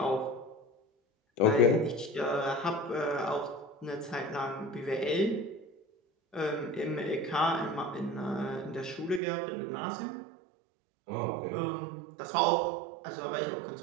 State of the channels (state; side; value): drops out; left; at 9.2 s